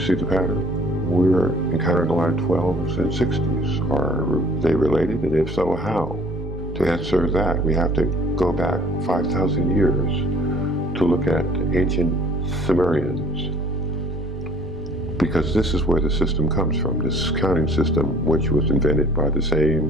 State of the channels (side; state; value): both; normal; correlation 0.53